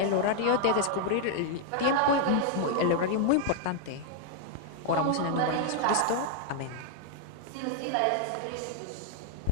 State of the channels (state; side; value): different; both; correlation 0.00